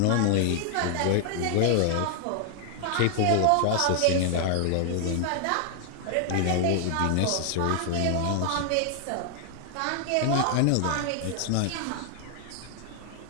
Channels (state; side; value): different; both; correlation 0.00